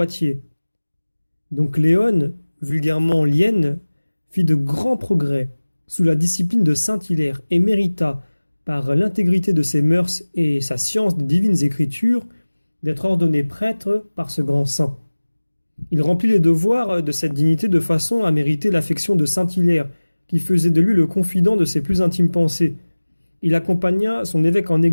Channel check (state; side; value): inverted; both; correlation -1.00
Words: Donc Léon, vulgairement Lienne, fit de grands progrès sous la discipline de Saint Hilaire et mérita, par l'intégrité de ses mœurs et sa science des divines écritures, d'être ordonné prêtre par ce grand saint. Il remplit les devoirs de cette dignité de façon à mériter l'affection de Saint Hilaire, qui faisait de lui le confident de ses plus intimes pensées. Il accompagna son évêque en